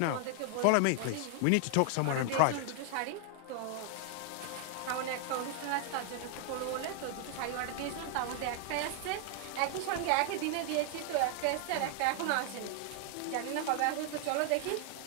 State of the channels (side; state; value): both; different; correlation 0.00